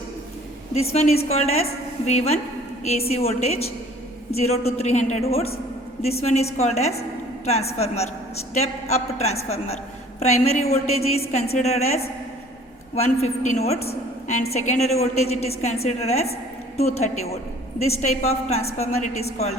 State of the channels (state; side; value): normal; both; correlation 0.52